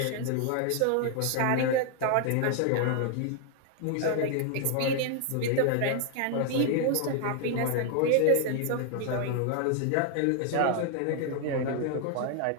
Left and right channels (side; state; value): both; different; correlation 0.00